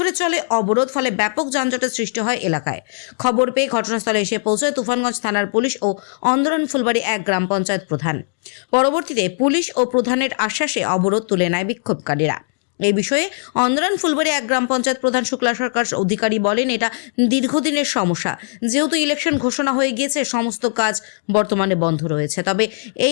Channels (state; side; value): silent; right; 65 dB below the other